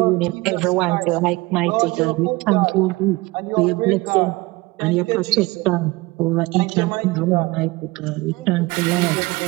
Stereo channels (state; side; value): quieter; left; 22.2 dB